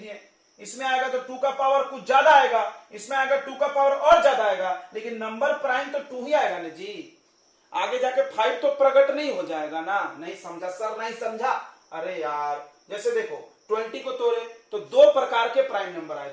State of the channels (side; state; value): both; identical; correlation 1.00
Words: इसमें आएगा तो 2 का पावर कुछ ज्यादा आएगा, इसमें आएगा 2 का पावर और ज्यादा आएगा, लेकिन नंबर प्राइम तो 2 ही आएगा ना जी। आगे जाके 5 तो प्रकट नहीं हो जाएगा ना। नहीं समझा सर, नहीं समझा। अरे यार जैसे देखो 20 को तोड़े तो 2 प्रकार के प्राइम नंबर आए,